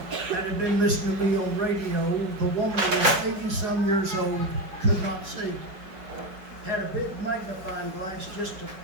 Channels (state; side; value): late; left; 5.0 ms